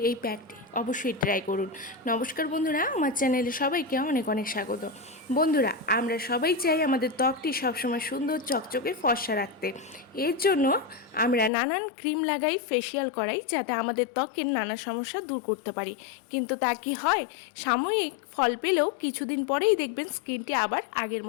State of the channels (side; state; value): right; drops out; at 11.5 s